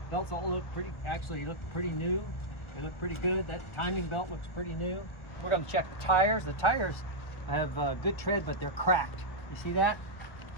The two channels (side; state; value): right; late; 1.4 ms